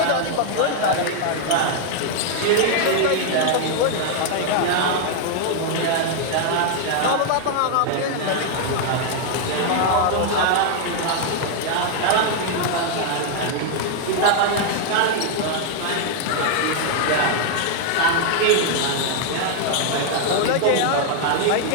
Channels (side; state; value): both; different; correlation 0.00